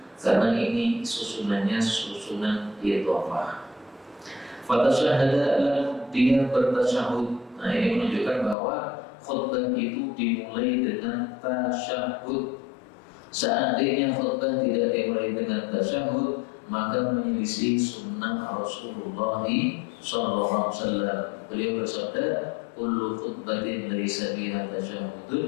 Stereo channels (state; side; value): drops out; right; at 8.6 s